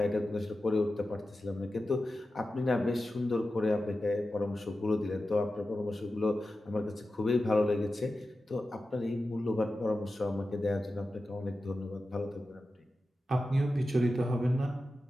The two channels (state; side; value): normal; both; correlation 0.93